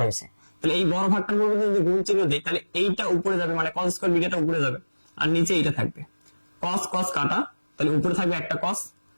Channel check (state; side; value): inverted; both; correlation -1.00